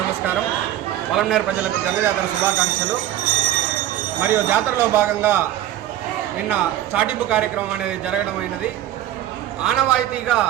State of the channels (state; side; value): quieter; left; 12.7 dB